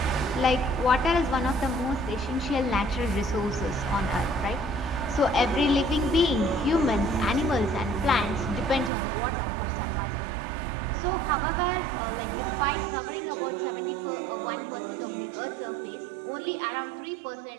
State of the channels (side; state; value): left; drops out; at 8.9 s